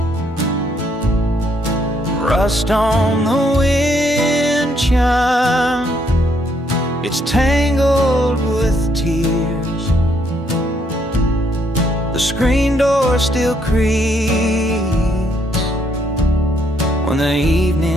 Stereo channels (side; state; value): both; normal; correlation 0.71